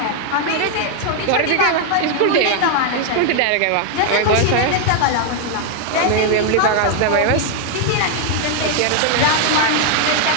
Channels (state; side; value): different; both; correlation 0.00